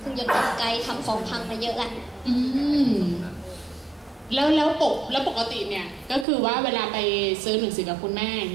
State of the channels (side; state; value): left; drops out; at 6.2 s